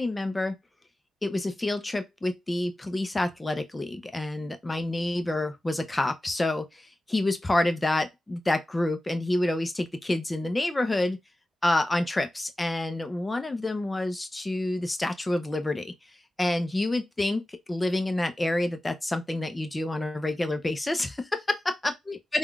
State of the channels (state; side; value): normal; both; correlation 0.95